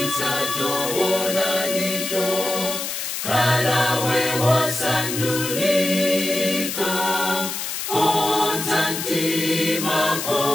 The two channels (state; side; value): noise; left; hiss, 4 dB below the sound